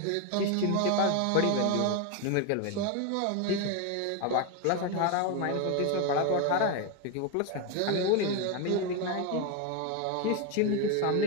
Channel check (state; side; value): different; both; correlation 0.02